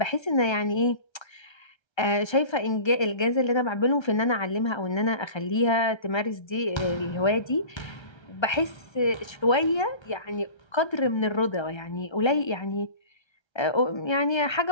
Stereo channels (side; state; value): right; late; 1.3 ms